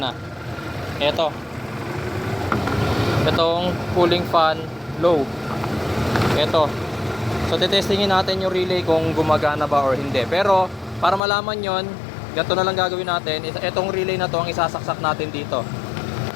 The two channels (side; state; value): right; drops out; at 11.2 s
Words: Ito. Itong cooling fan low. Ito. So, titestingin natin yung relay kung gumagana ba or hindi. Pero, para malaman yon, ganito na lang gagawin natin. Itong relay na to ang isasaksak natin dito.